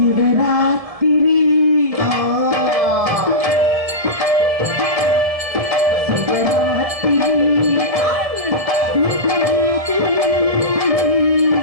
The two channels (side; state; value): left; late; 1.7 ms